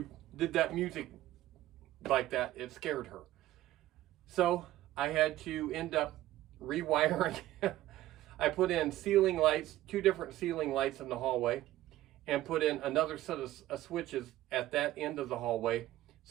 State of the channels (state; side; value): quieter; left; 15.1 dB